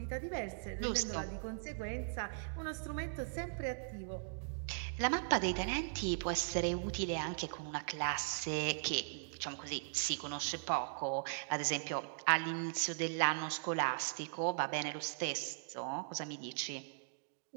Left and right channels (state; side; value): silent; left; digital silence